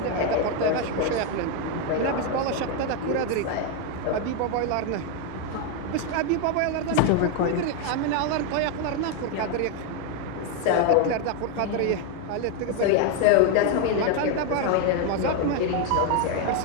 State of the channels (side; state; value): both; different; correlation 0.01